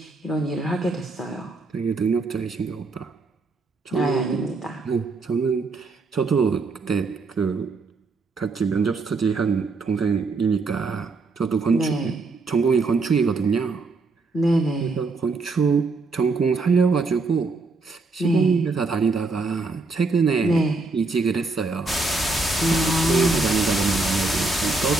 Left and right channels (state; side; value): quieter; left; 3.7 dB